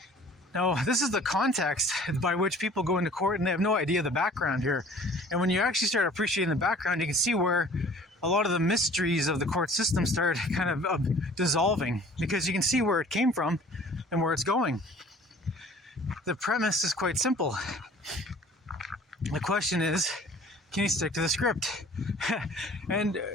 Now, this is the context by which people go into court, and they have no idea the background here. And when you actually start appreciating the background, you can see where a lot of the mysteries of the court system start kind of dissolving, because you can see where it came from and where it's going. The premise is quite simple. The question is, can you stick to the script? And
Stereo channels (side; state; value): both; normal; correlation 0.50